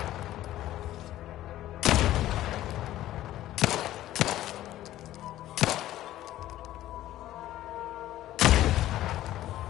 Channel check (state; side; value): quieter; right; 14.1 dB